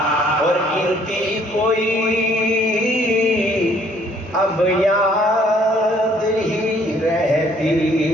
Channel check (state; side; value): normal; both; correlation 0.62